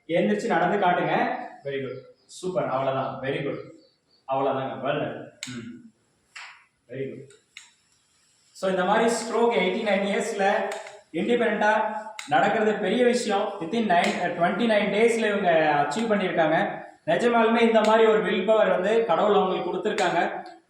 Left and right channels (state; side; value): identical; both; correlation 1.00